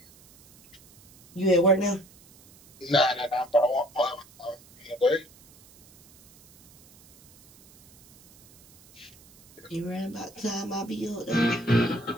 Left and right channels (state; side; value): noise; right; hiss, 26 dB below the sound